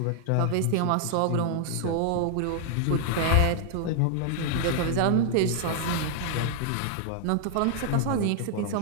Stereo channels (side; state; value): both; different; correlation 0.00